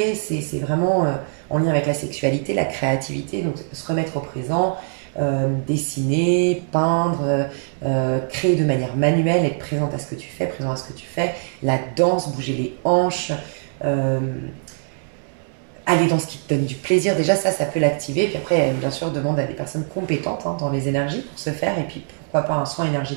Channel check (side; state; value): left; silent; digital silence